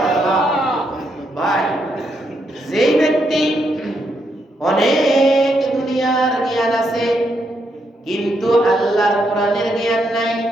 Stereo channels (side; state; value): both; normal; correlation 0.78